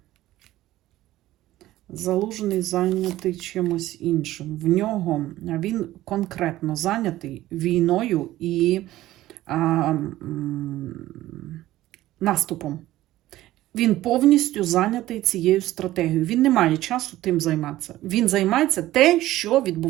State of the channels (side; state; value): left; quieter; 15.4 dB